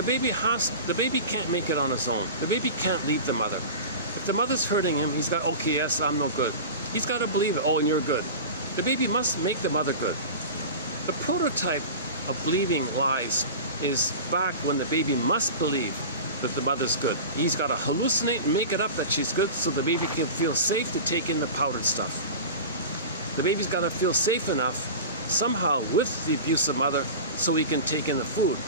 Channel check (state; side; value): inverted; both; correlation -0.31